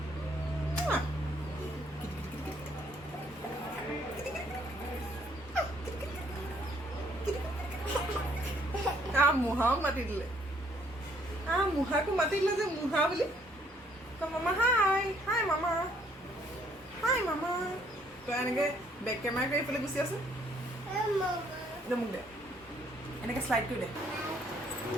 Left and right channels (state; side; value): normal; both; correlation 0.65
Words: মুহাও মাতি দিলে মুহাকো মাতি দিলে যে মুহা বুলি মামা হাই হাই মামা তই এনেকে বেক কেমেৰা কৰি এইফালে গুচি আছে মোক দে এনেকে শ্লাইড কৰি দে